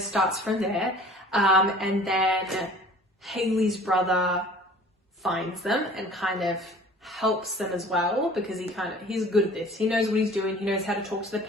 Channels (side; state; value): both; normal; correlation 0.47